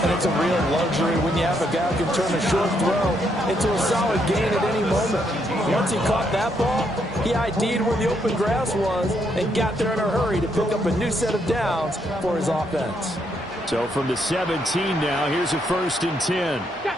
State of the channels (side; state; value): both; normal; correlation 0.75